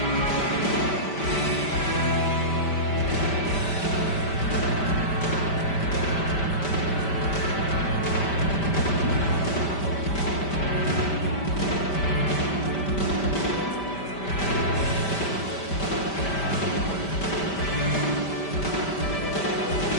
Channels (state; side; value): late; right; 5.1 ms